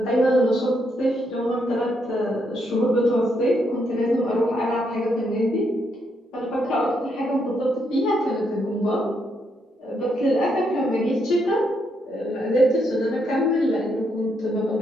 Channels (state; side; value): normal; both; correlation 0.77